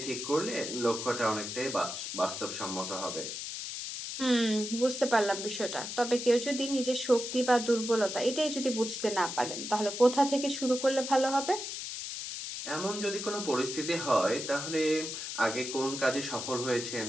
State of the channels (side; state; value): left; noise; hiss, 6 dB below the sound